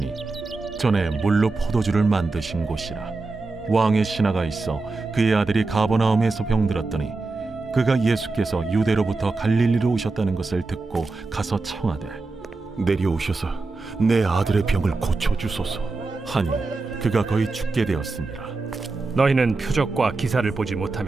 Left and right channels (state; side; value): quieter; left; 3.6 dB